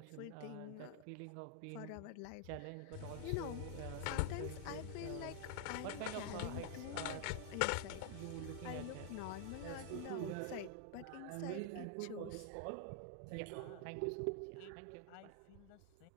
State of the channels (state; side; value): different; both; correlation 0.00